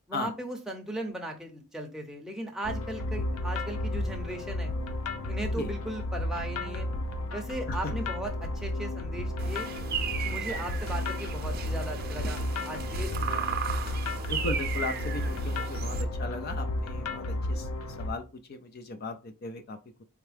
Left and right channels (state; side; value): normal; both; correlation 0.55